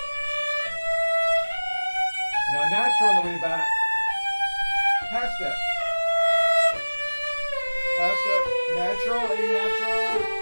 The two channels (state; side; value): inverted; both; correlation -1.00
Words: Now natural on the way back. Half step. Half step. Natural, A natural.